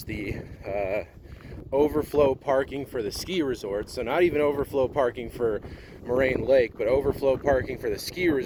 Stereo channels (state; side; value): identical; both; correlation 1.00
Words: the overflow parking for the ski resort. So not even overflow parking for Moraine Lake, but overflow parking for the ski